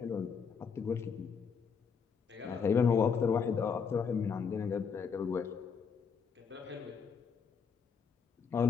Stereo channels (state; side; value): quieter; right; 6.2 dB